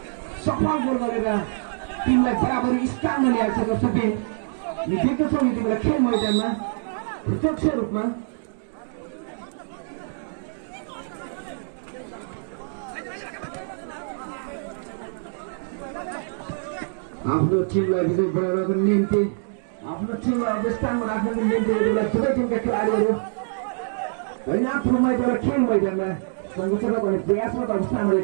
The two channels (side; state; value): left; silent; digital silence